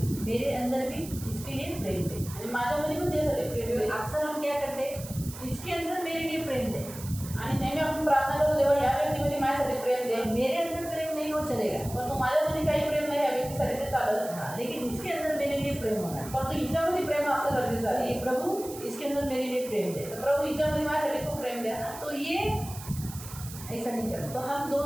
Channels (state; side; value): noise; right; hiss, 13 dB below the sound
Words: मेरे अंदर भी इसके लिए प्रेम दे. आणि माझ्यामध्ये पण त्यासाठी प्रेम दे. अक्सर हम क्या करते हैं, इसके अंदर मेरे लिए प्रेम दे. आणि नेहमी आपण प्रार्थना करू देवा या व्यक्तीमध्ये माझ्यासाठी प्रेम दे. मेरे अंदर प्रेम नहीं हो चलेगा, परंतु माझ्यामध्ये काही प्रेम नाही या व्यक्तीसाठी ते चालत. हाँ, लेकिन इसके अंदर मेरे लिए प्रेम होना. परंतु हिच्यामध्ये प्रेम असं गरजेचं आहे. ये प्रभु इसके अंदर मेरे लिए प्रेम दे. प्रभू हिच्यामध्ये माझ्यासाठी खूप प्रेम द्या. तो ये ऐसा नहीं करना. तो हम